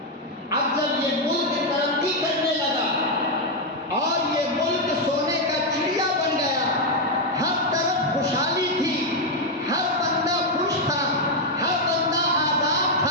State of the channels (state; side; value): normal; both; correlation 0.02